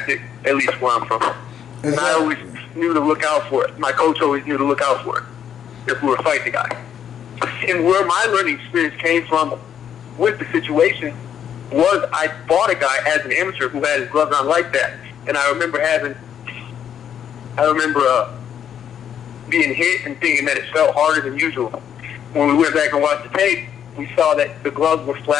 at least where I'm from. And I always knew to look out for it. My coach always knew to look out for it if we were fighting the guy. And where my learning experience came from with the situation was I fought a guy as an amateur who had his gloves on like that. And I remember being hit and thinking that it felt harder than usual. When we went back and watched the tape, we saw that the gloves were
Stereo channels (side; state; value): right; quieter; 9.1 dB